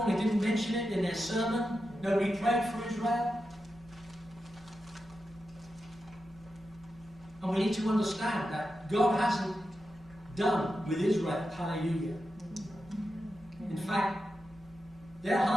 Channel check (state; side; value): normal; both; correlation 0.89